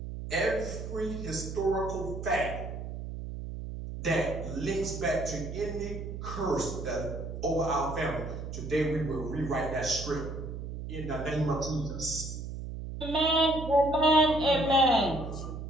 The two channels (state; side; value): noise; right; hum, 7 dB below the sound